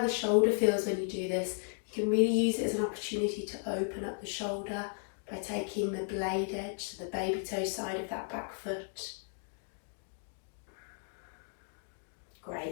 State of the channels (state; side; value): silent; right; 55 dB below the other